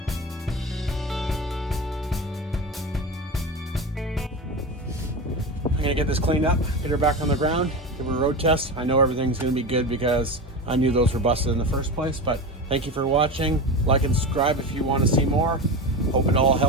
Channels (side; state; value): both; normal; correlation 0.24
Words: I'm gonna get this cleaned up, get her back on the ground, give her a road test. I know everything's gonna be good because I knew those were busted in the first place, but thank you for watching. Like and subscribe if you want to see more. Hope it all